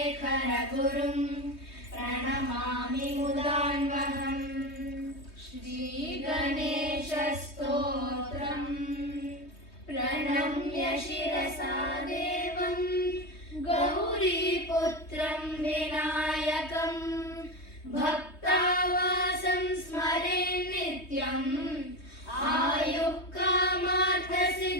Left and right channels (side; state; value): right; late; 3.2 ms